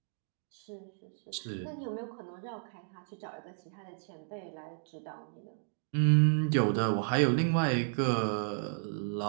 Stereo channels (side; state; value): left; silent; digital silence